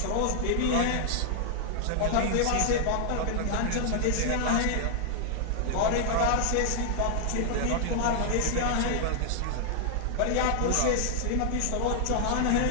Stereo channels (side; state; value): both; different; correlation -0.01